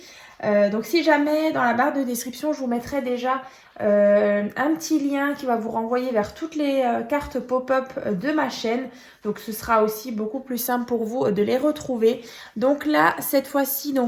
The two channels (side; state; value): both; identical; correlation 1.00